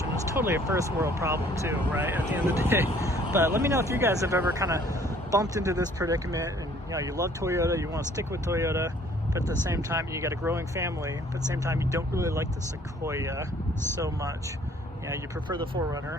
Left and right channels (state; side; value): normal; both; correlation 0.58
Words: It's totally a first world problem too, right, at the end of the day. But let me know if you guys have ever kind of bumped into this predicament and, you know, you love Toyota, you want to stick with Toyota, but at the same time you got a growing family, but at the same time you don't really like the Sequoia so much. yeah, you prefer the